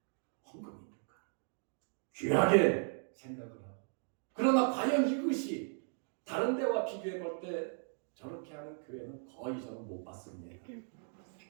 헌금이니까. 귀하게 생각을 하고. 그러나 과연 이것이 다른 데와 비교해 볼 때 저렇게 하는 교회는 거의 저는 못 봤습니다.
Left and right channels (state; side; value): silent; left; 53 dB below the other